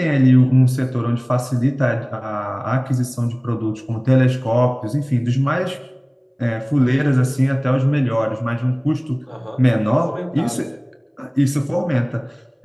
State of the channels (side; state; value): both; identical; correlation 1.00